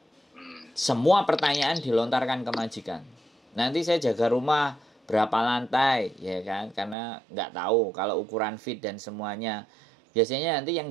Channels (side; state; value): left; drops out; at 7.0 s